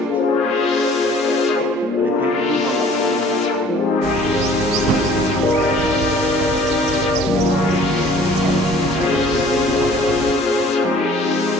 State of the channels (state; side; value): normal; both; correlation 0.53